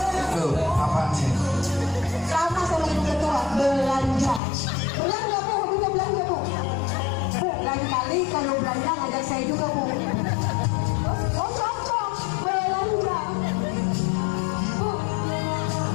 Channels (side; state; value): right; drops out; at 4.4 s